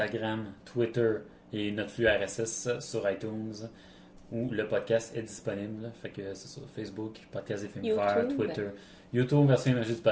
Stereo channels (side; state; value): both; identical; correlation 1.00